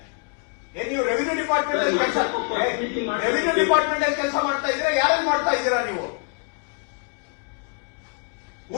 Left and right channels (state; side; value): quieter; right; 39.9 dB